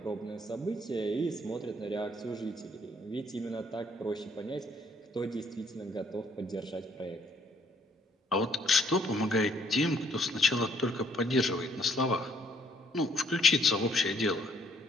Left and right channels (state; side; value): normal; both; correlation 0.66